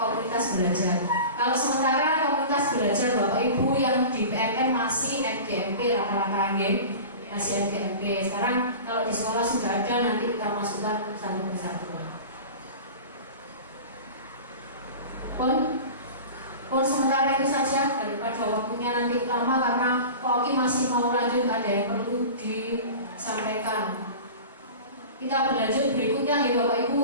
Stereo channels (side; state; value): both; inverted; correlation -0.35